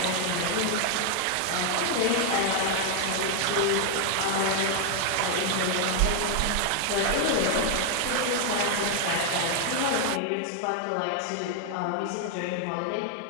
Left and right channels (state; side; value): different; both; correlation 0.00